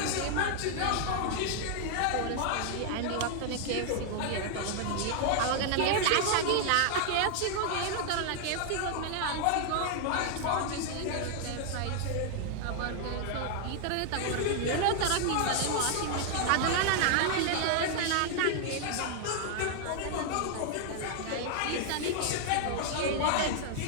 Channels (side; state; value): both; different; correlation 0.00